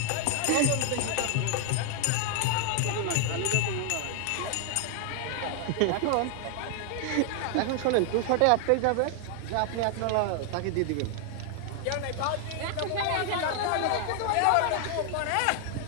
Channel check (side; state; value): both; different; correlation 0.00